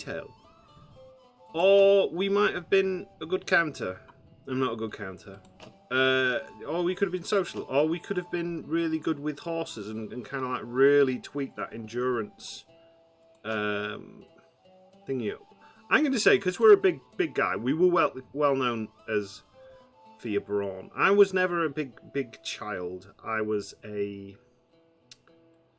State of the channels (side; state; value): both; identical; correlation 1.00